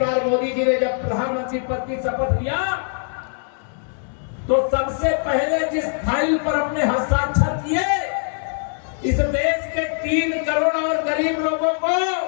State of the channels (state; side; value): silent; right; digital silence